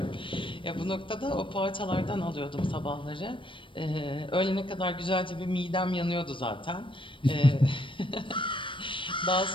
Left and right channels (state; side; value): late; right; 0.25 ms